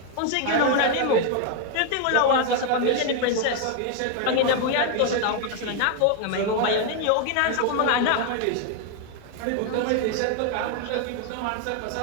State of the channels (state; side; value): different; both; correlation 0.01